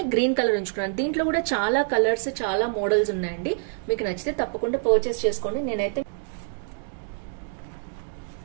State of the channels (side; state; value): left; silent; digital silence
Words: గ్రీన్ కలర్ ఉంచుకున్నాను. దీంట్లో కూడా చాలా కలర్స్ చాలా మోడల్స్ ఉన్నాయండి. మీకు నచ్చితే తప్పకుండా పర్చేస్ చేసుకోండి. నేనైతే